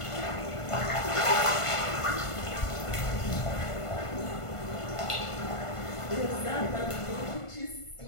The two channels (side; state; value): right; late; 1.5 ms